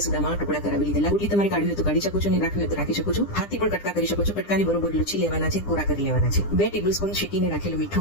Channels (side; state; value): right; late; 10 ms